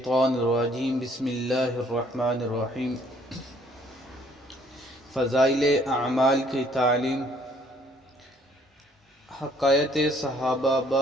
الرجیم بسم اللہ الرحمن الرحیم۔ فضائل اعمال کی تعلیم، حکایت صحابہ،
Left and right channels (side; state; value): both; normal; correlation 0.62